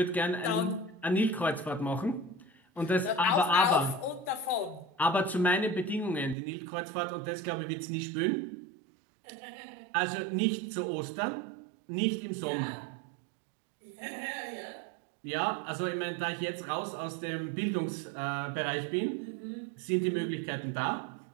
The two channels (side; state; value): left; drops out; at 6.4 s